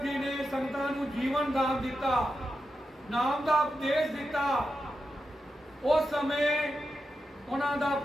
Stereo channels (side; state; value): both; normal; correlation 0.88